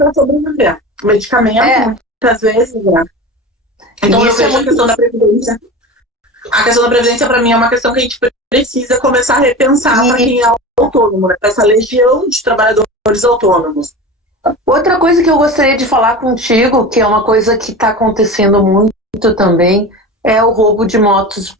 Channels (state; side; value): normal; both; correlation 0.30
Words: sobreviver. Medicamento, muitas vezes, né? Então eu vejo a questão da Previdência. A questão da Previdência, para mim, é uma questão que a gente precisa começar a repensar para quem é autônomo, né? Para essa legião de trabalhadores autônomos. Outra coisa que eu gostaria de falar contigo, que é uma coisa que está acontecendo muito também, é o roubo de motos